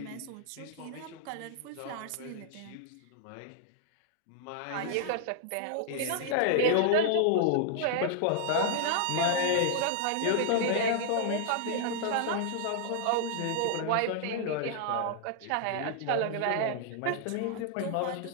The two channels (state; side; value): different; both; correlation -0.01